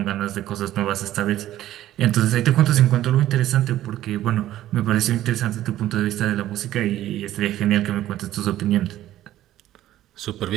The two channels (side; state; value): left; quieter; 13.6 dB